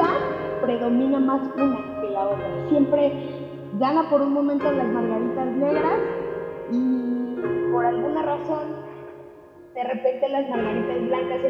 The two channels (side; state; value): both; identical; correlation 1.00